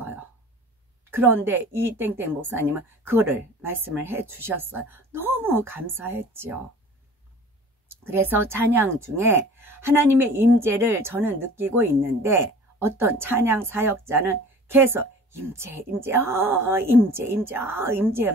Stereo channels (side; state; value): both; normal; correlation 0.44